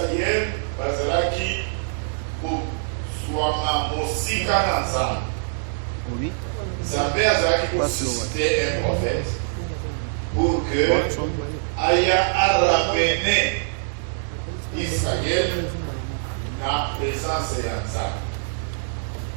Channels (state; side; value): silent; left; digital silence